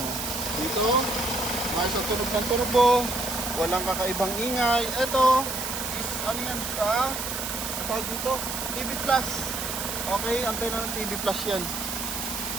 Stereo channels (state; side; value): noise; right; hiss, 4 dB below the sound